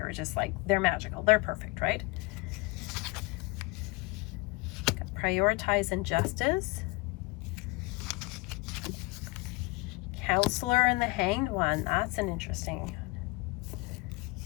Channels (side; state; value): right; quieter; 24.3 dB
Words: are just like, they're magical. They're perfect, right? Prioritize Injustice. Counselor and the Hanged One. That's an interesting.